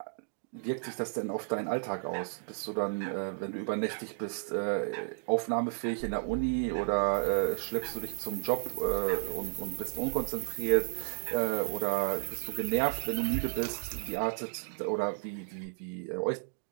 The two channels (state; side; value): silent; left; digital silence